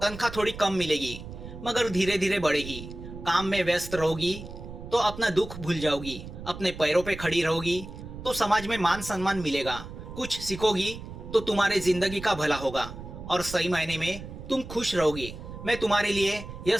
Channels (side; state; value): right; noise; rumble, 12 dB below the sound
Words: तनख्वाह थोड़ी कम मिलेगी, मगर धीरे धीरे बढ़ेगी। काम में व्यस्त रहोगी तो अपना दुख भूल जाओगी। अपने पैरों पे खड़ी रहोगी तो समाज में मान सम्मान मिलेगा। कुछ सीखोगी तो तुम्हारे जिंदगी का भला होगा और सही मायने में तुम खुश रहोगी। मैं तुम्हारे लिए यह